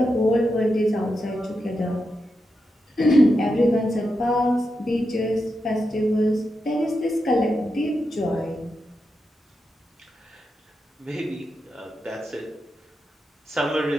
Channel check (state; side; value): normal; both; correlation 0.87